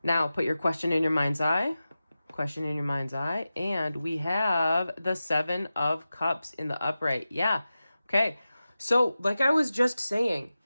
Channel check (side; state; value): both; inverted; correlation -0.94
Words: Now, put your question in your mind's eye. Question in your mind's eye, and we have the 7 of Cups in the upright. Yeah. Okay. So like I was just saying,